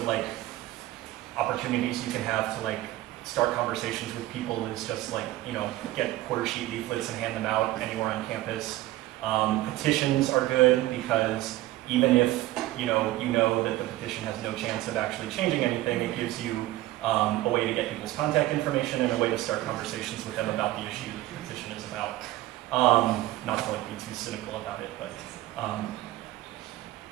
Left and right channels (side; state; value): left; quieter; 16.2 dB